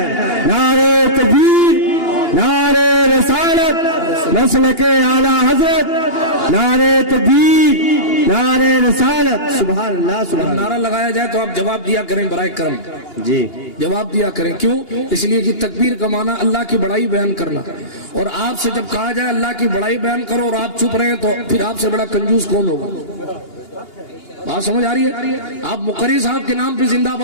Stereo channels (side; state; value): right; late; 2.8 ms